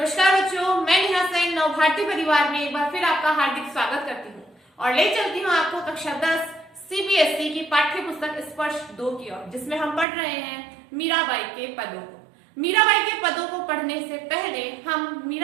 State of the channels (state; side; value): drops out; left; at 10.1 s